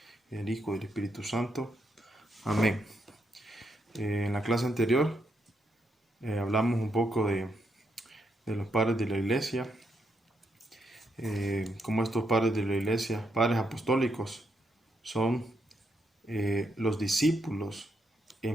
del Hijo y del Espíritu Santo. Amén. En la clase anterior hablamos un poco de los padres de la iglesia, cómo estos padres de la iglesia, padres apostólicos, son los discípulos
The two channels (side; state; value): both; normal; correlation 0.79